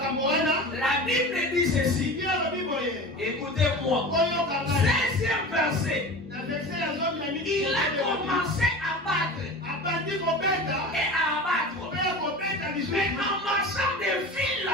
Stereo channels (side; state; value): both; normal; correlation 0.33